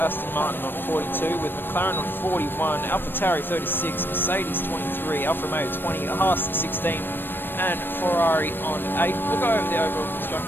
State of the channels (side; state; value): right; late; 0.096 ms